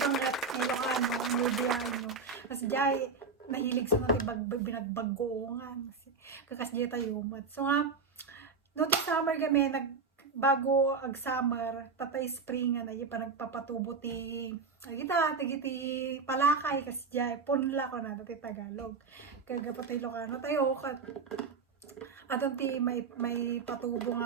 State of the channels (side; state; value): left; quieter; 4.8 dB